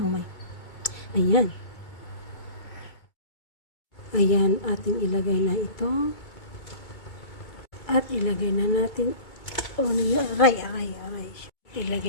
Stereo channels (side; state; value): right; late; 2.2 ms